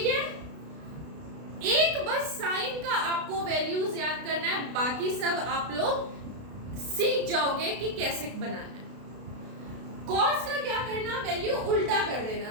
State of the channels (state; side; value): late; left; 32 ms